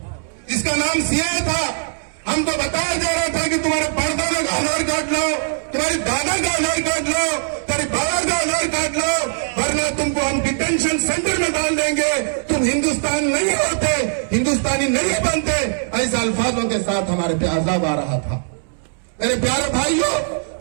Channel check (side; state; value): left; silent; 66 dB below the other